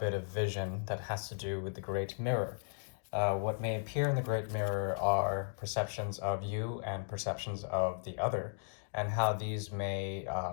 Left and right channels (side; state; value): right; silent; digital silence